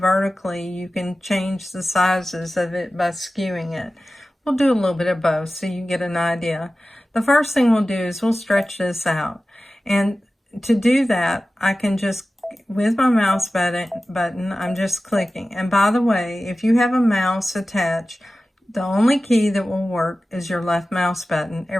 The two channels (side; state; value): both; normal; correlation 0.95